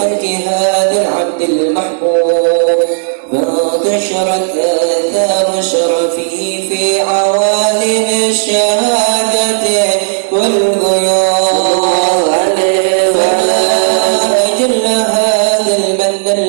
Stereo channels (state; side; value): silent; left; digital silence